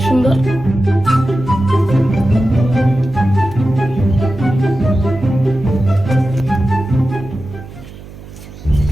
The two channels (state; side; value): noise; right; hum, 17 dB below the sound